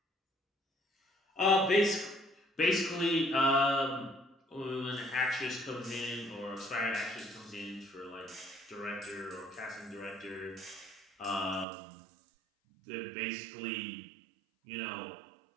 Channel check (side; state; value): left; drops out; at 11.7 s